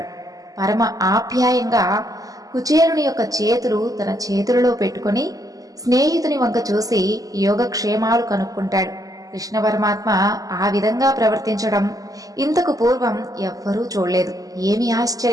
పరమ ఆప్యాయంగా కుచేలుని యొక్క చేతులు తన చేతులలో పెట్టుకొని స్నేహితుని వంక చూసి యోగక్షేమాలు కనుక్కుంటాడు. కృష్ణ పరమాత్మ ఆ విధంగా ప్రవర్తించడం ఇంతకు పూర్వం ఎవ్వరూ చూడలేదు. ఏమి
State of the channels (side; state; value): left; late; 0.17 ms